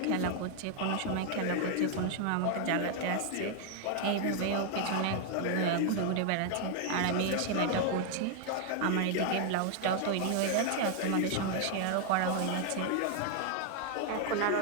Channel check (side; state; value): both; different; correlation 0.00